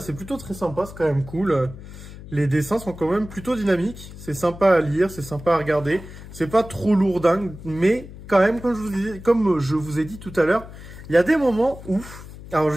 c'est plutôt très sympa, c'est quand même cool. Les dessins sont quand même plutôt dynamiques, c'est sympa à lire, c'est sympa à regarder. C'est pas trop lourdingue, mais quand même, comme je vous ai dit tout à l'heure, il y a des moments où... Alors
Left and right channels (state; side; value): noise; left; hum, 15 dB below the sound